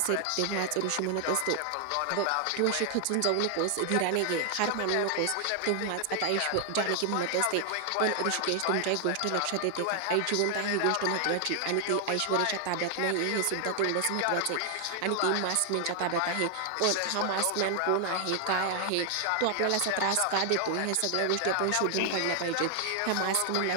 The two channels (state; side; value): different; both; correlation 0.00